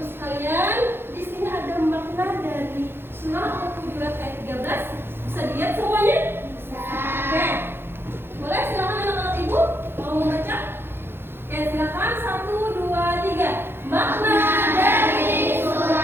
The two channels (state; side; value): late; left; 0.11 ms